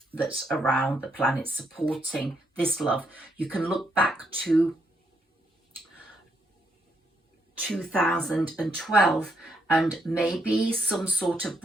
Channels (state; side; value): normal; both; correlation 0.75